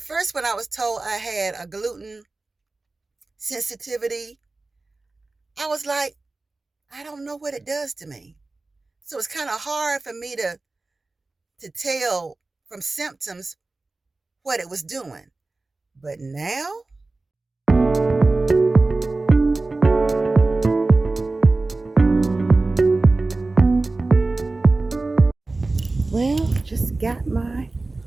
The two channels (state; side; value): quieter; left; 3.3 dB